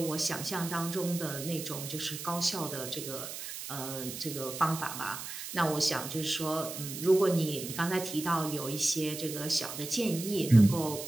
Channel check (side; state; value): right; noise; hiss, 8 dB below the sound